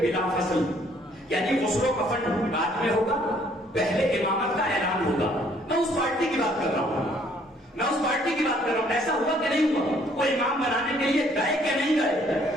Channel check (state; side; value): normal; both; correlation 0.63